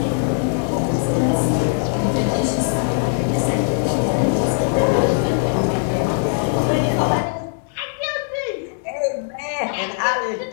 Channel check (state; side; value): silent; right; digital silence